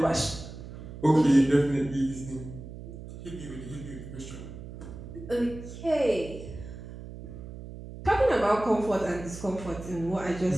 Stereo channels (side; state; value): right; noise; hum, 12 dB below the sound